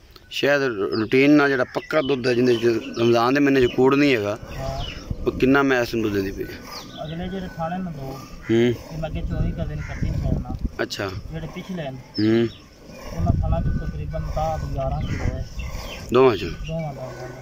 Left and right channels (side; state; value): both; identical; correlation 1.00